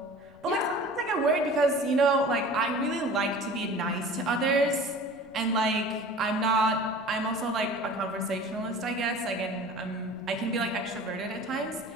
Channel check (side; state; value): left; noise; rumble, 29 dB below the sound